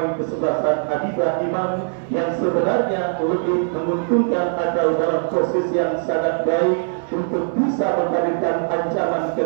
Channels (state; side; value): silent; left; digital silence